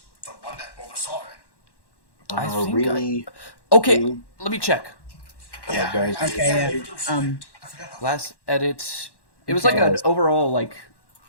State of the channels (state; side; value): late; right; 1.1 ms